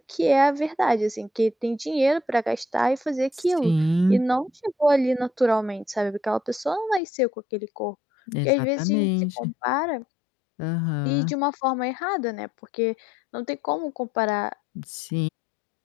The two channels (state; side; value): drops out; right; at 7.0 s